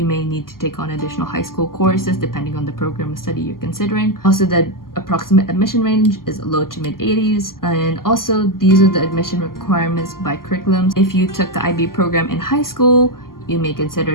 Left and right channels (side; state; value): right; late; 0.92 ms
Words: may need to take on additional high school courses depending on the program of study you're considering. Also, the approximate admission range is low to mid 80s. And also, these are the admission requirements by curriculums. If you took the IB program in high school, you may